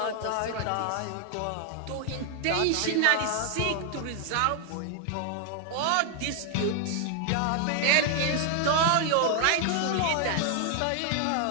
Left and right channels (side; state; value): both; different; correlation 0.00